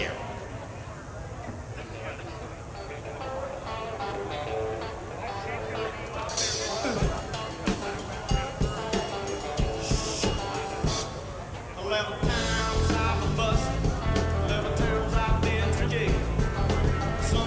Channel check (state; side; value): identical; both; correlation 1.00